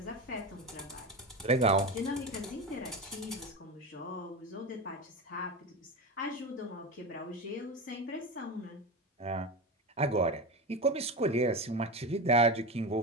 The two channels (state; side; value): normal; both; correlation 0.22